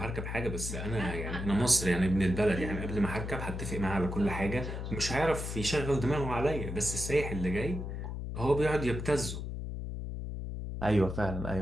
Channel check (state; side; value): noise; left; hum, 5 dB below the sound